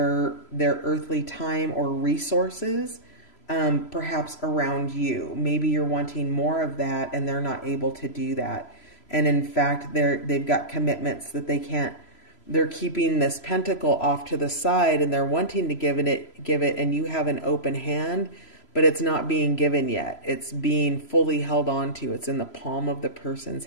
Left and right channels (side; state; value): right; late; 3.0 ms